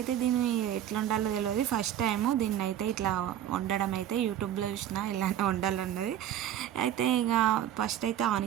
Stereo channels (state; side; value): quieter; left; 11.1 dB